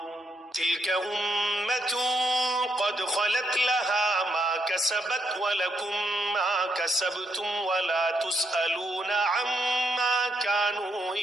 تلك أمة قد خلت لها ما كسبت ولكم ما كسبتم ولا تسألون عما كانوا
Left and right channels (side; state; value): both; normal; correlation 0.77